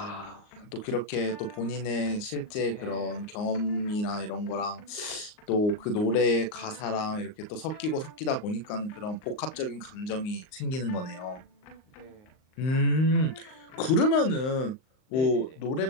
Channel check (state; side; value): late; right; 38 ms